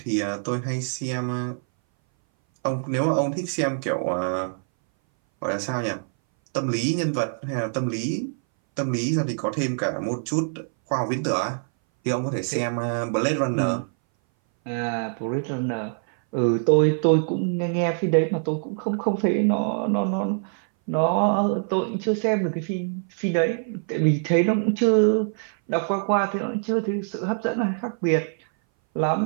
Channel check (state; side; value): silent; left; 60 dB below the other